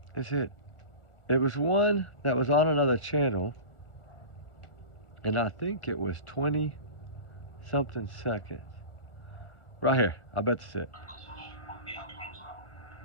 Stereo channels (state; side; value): late; right; 1.4 ms